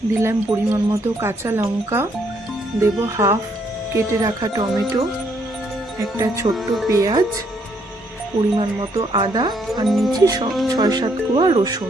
দিলাম পরিমাণ মতো কাঁচা লঙ্কা, দেব হাফ কেটে রাখা টমেটো, একটা ছোট্ট পেঁয়াজ, পরিমাণ মতো আদা, আর নিয়েছি 6-7 কোয়া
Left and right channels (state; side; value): normal; both; correlation 0.70